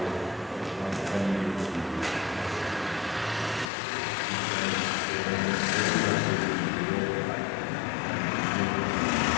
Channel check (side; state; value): right; drops out; at 3.7 s